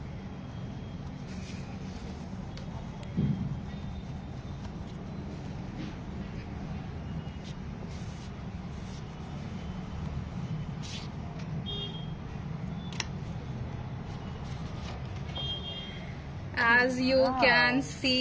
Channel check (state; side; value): identical; both; correlation 1.00